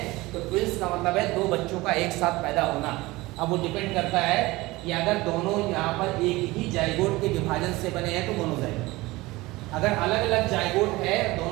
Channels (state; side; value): quieter; left; 20.5 dB